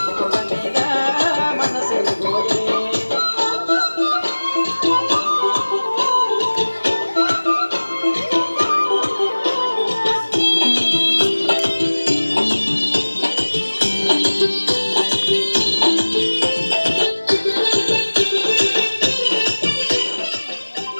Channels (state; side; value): inverted; both; correlation -1.00